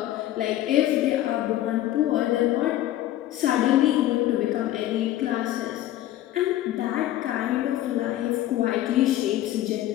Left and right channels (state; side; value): quieter; right; 13.9 dB